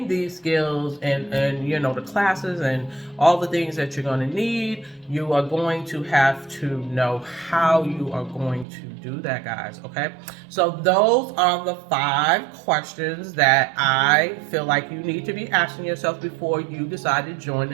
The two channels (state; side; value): drops out; left; at 8.7 s